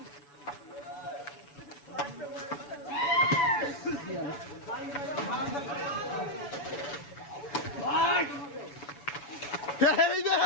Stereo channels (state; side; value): late; right; 7.0 ms